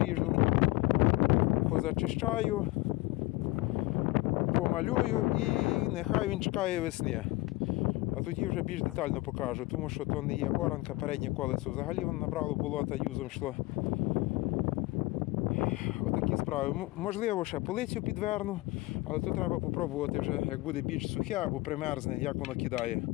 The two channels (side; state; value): right; quieter; 20.8 dB